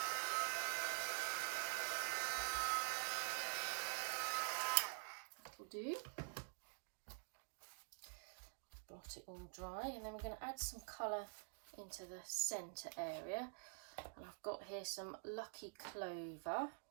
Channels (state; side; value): silent; left; digital silence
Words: That'll do. Blot it all dry, and then we're going to add some colour into the centre area. And I've got here some Lucky Clover